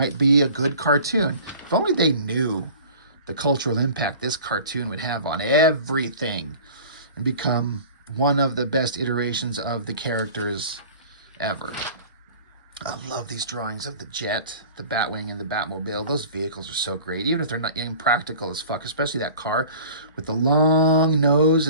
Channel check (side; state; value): both; inverted; correlation -0.43